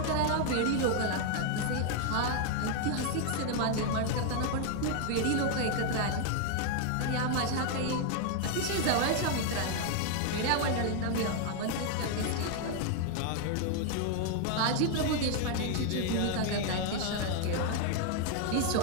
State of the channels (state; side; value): different; both; correlation 0.00